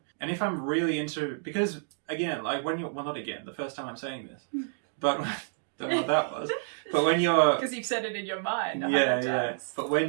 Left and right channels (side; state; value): left; silent; digital silence